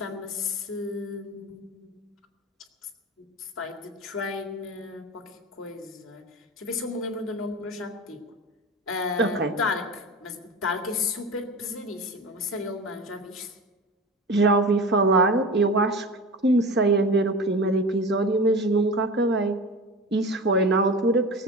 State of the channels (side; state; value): both; normal; correlation 0.31